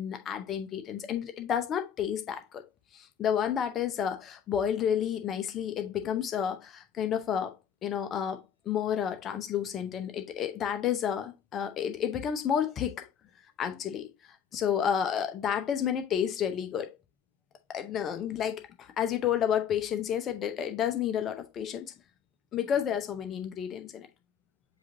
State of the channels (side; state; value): right; quieter; 8.6 dB